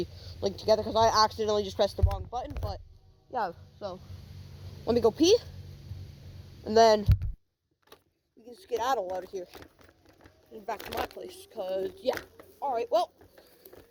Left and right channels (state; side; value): identical; both; correlation 1.00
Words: linked together, because I accidentally just pressed the wrong button, but yeah, so let me go pee, and then we can skedaddle out of here and back to my place, because, yeah. Alright, well,